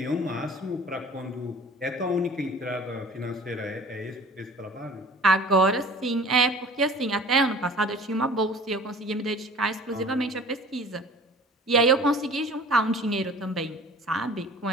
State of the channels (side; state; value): both; normal; correlation 0.45